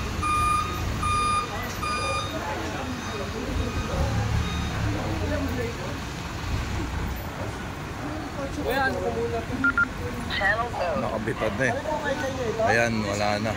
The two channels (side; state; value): both; identical; correlation 1.00